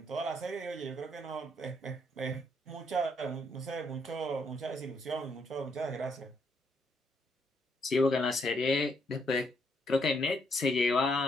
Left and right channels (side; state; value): both; normal; correlation 0.73